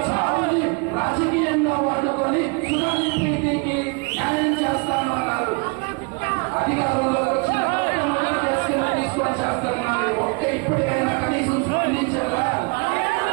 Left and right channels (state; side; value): quieter; left; 31.9 dB